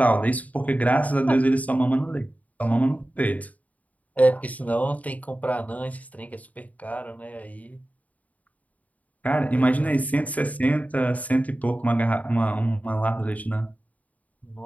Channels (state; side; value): late; right; 0.072 ms